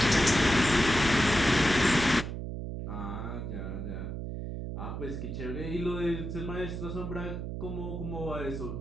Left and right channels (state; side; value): noise; right; hum, 6 dB below the sound